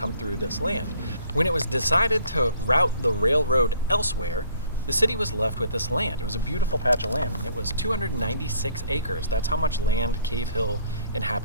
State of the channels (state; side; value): inverted; both; correlation -0.60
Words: through this land. When it was decided to route the railroad elsewhere, the city was left with this land. It was a beautiful patch of land, and it was 296 acres. That's how much land Cave Hill